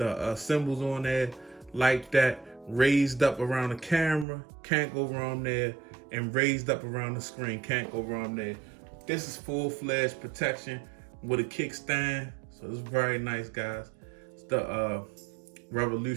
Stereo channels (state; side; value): drops out; left; at 4.2 s